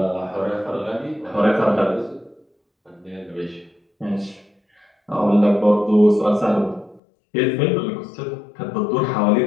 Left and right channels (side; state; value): right; drops out; at 7.0 s